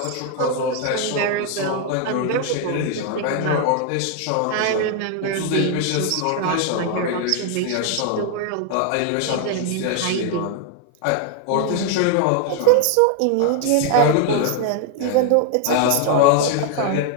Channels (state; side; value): different; both; correlation 0.00